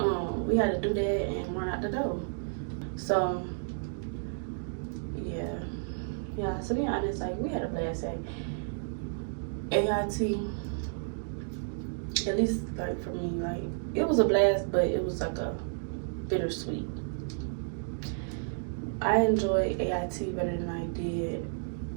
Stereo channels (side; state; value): left; silent; digital silence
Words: we had to do that and run out the door. So yeah. So to be honest, like we had a blast at AIT. At least like for me, like it was a blast, but it was like a bittersweet. I enjoyed AIT better than I did